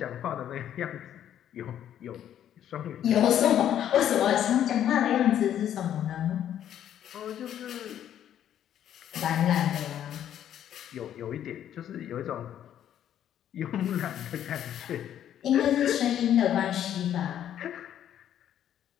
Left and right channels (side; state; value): right; quieter; 10.5 dB